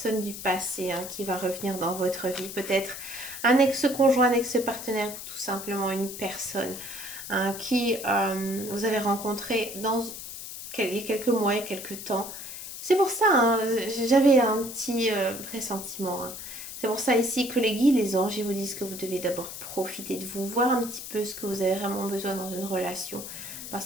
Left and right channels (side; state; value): left; noise; hiss, 10 dB below the sound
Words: du passé hein, qui va revenir dans votre vie. Peut-être un ex-conjoint, un ex-partenaire, ou tout simplement une personne hein, qui vous avez rencontré il y a quelques mois, il y a quelques temps. C'est pour ça, hein, j'avais un petit pressentiment. Hein. C'est pour ça ici que les guides, les anges, ils vous disent que vous devez d'abord profiter de vous, voir un petit peu ce que vous avez vraiment besoin dans une relation.